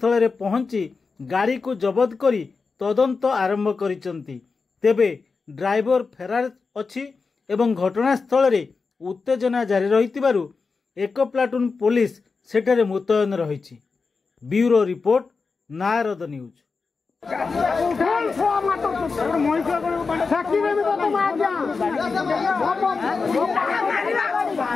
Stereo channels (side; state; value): right; quieter; 4.6 dB